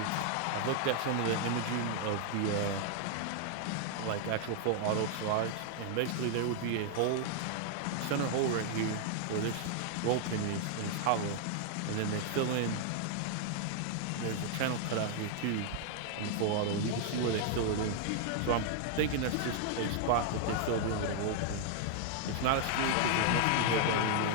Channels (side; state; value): both; different; correlation 0.00